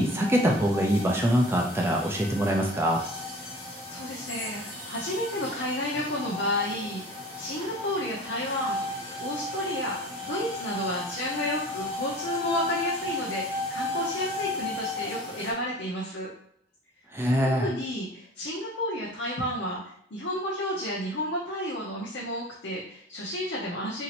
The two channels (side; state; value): both; normal; correlation 0.42